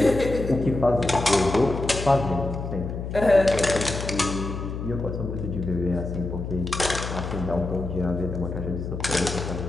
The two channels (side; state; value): left; noise; hum, 6 dB below the sound